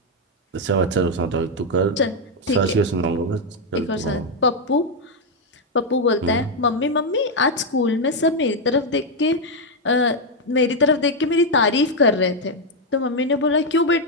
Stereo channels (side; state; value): both; normal; correlation 0.02